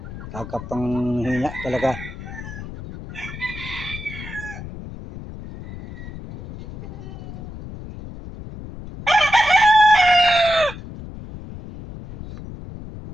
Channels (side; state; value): left; noise; rumble, 12 dB below the sound